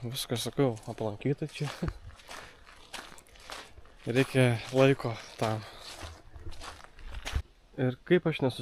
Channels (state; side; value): identical; both; correlation 1.00